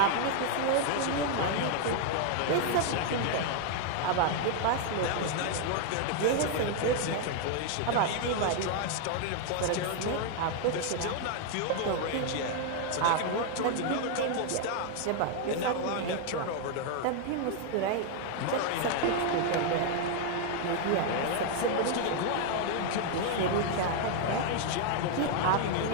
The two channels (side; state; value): both; different; correlation 0.00